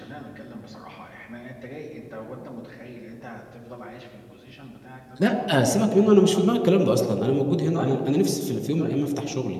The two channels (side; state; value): both; identical; correlation 1.00